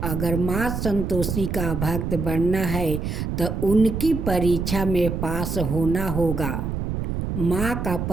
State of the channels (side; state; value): right; noise; rumble, 3 dB below the sound